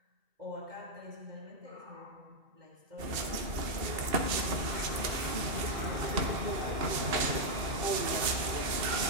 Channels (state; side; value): late; left; 2.7 ms